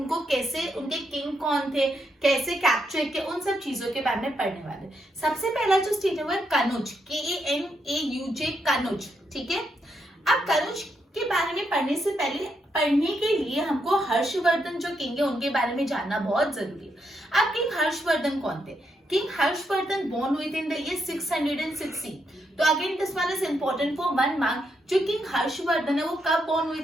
कैसे, उनके किंग कौन थे, कैसे कैप्चर किए, उन सब चीजों के बारे में पढ़ने वाले। सबसे पहला जो स्टेट है वो है कनौज, KANAUJ, कनौज। ठीक है, अब कनौज के बारे में पढ़ने से पहले, पढ़ने के लिए हमको हर्षवर्धन जो किंग है उनके बारे में जानना बहुत जरूरी है। अब किंग हर्षवर्धन कौन थे? किंग हर्षवर्धन बोर्न हुए थे इन द ईयर 660। तो again this one is important for 1 mark. जो किंग हर्षवर्धन है वो कब बोर्न हुए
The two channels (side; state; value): both; normal; correlation 0.80